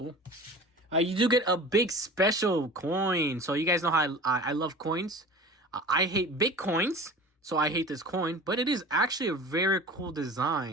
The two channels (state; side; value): normal; both; correlation 0.38